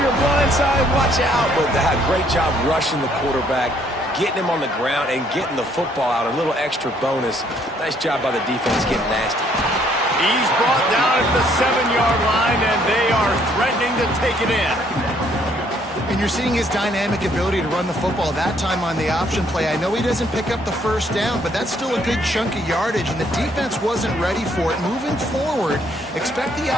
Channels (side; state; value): both; normal; correlation 0.66